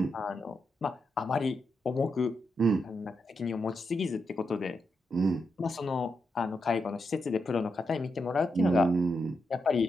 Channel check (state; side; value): normal; both; correlation 0.84